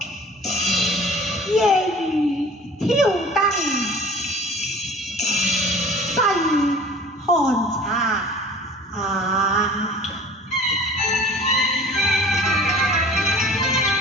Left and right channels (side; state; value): both; normal; correlation 0.45